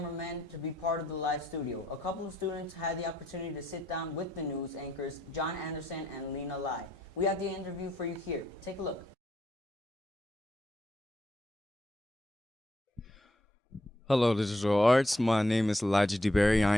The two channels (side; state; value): both; normal; correlation 0.76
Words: to be part of the live studio. A couple of students had the opportunity to sit down with the news anchors, John Anderson and Lena Lai. We have the interview for you here. Take a look. Hello, Digital Arts. My name is Elijah DeBerry. I